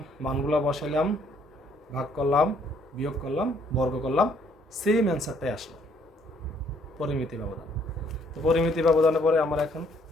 মানগুলো বসাইলাম, ভাগ করলাম, বিয়োগ করলাম, বর্গ করলাম, সেম অ্যান্সারটাই আসলো, পরিমিতি ব্যবধান। তো পরিমিতি ব্যবধানের পরে আমার এখন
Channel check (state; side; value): normal; both; correlation 0.66